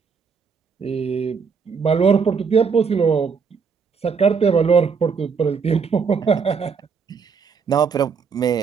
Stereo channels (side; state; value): left; quieter; 5.7 dB